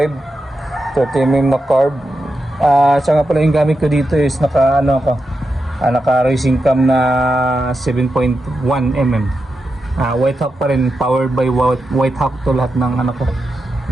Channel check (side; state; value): both; normal; correlation 0.88